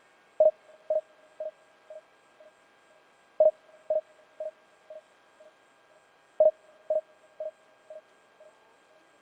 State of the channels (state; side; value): identical; both; correlation 1.00